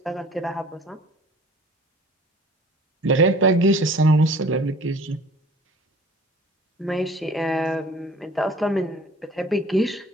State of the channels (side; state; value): both; normal; correlation 0.49